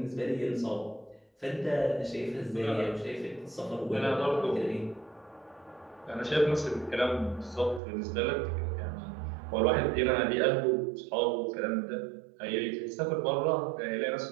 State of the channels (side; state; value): left; drops out; at 7.8 s